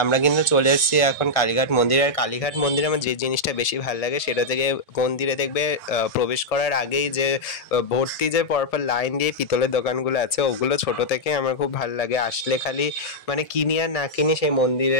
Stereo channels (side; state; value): right; late; 1.7 ms